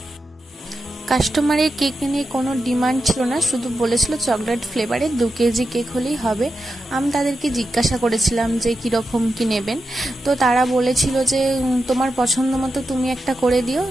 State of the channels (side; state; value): both; normal; correlation 0.89